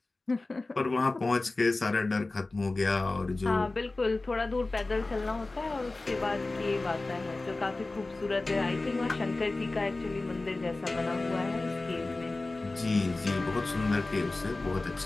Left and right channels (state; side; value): quieter; right; 3.2 dB